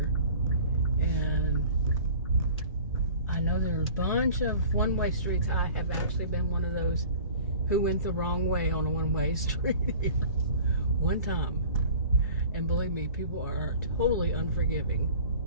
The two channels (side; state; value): both; inverted; correlation -0.44